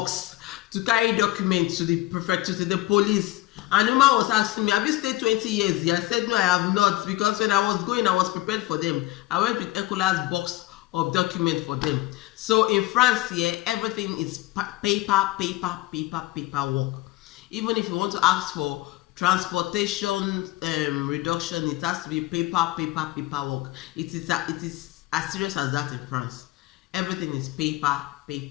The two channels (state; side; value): quieter; right; 18.3 dB